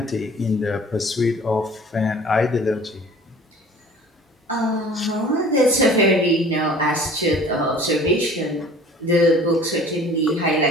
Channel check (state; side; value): normal; both; correlation 0.47